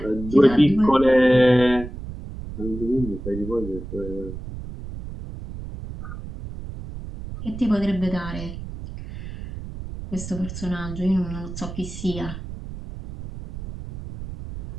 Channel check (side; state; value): right; noise; rumble, 10 dB below the sound